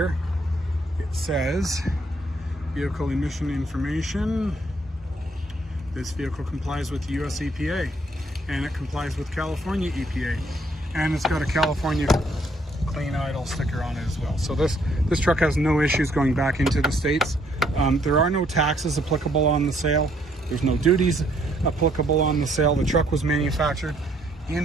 it says vehicle emission information. This vehicle complies with the US EPA, and it complies with California EPA, and it's got a California clean idle sticker on it as well. So this truck has no issues going back into the States. There are no taxes applicable on the sale. There's no duties applicable on the sale. The truck was manufactured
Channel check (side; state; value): both; normal; correlation 0.68